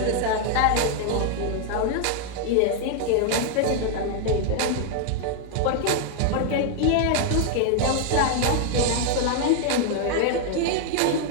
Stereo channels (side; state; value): both; different; correlation 0.00